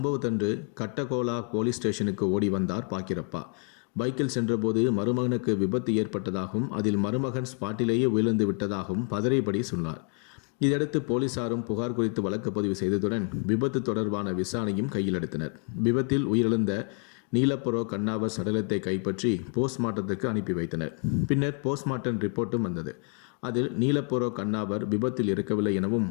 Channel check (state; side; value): quieter; right; 39.0 dB